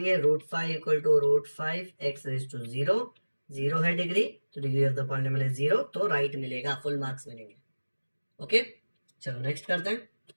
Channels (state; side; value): inverted; both; correlation -1.00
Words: √5 = √5x⁻0, 0 है डिग्री, तो degree of the polynomial is 0, तो राइट मिलेगा, फुल मार्क्स मिलेंगे। ओके, चलो नेक्स्ट करते हैं।